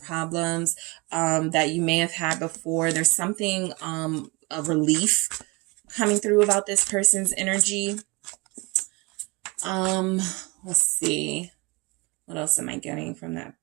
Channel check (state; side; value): quieter; left; 26.8 dB